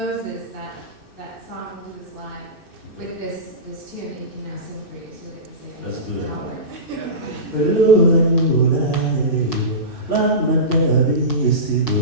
that song into his live with this tune that he can now sing for you, so that you can say Let's do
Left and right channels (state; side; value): late; left; 2.6 ms